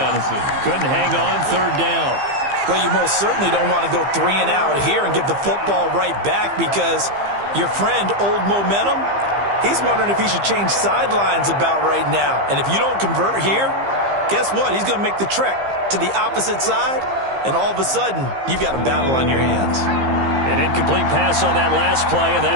Couldn't hang on 3rd down. Well, you most certainly don't want to go 3 and out here and give the football right back because your friend, Old Momentum, he's wondering if he should change sidelines about right now. And if you don't convert here, guess what? He's going to make the trek to the opposite side, and all of a sudden, you've got a battle on your hands. An incomplete pass on that last play, and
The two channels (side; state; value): left; late; 15 ms